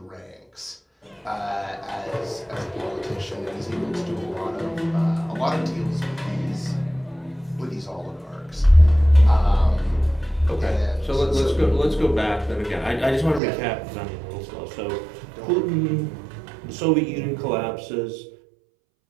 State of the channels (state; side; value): drops out; left; at 13.4 s